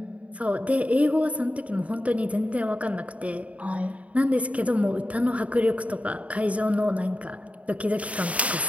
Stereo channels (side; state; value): left; late; 0.067 ms